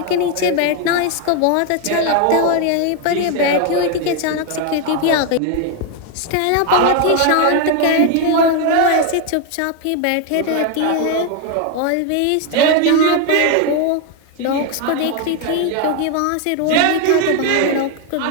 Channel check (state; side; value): different; both; correlation 0.01